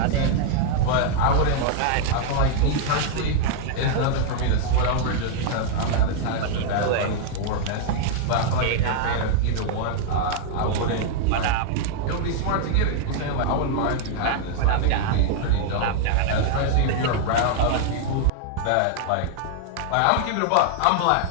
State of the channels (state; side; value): different; both; correlation -0.01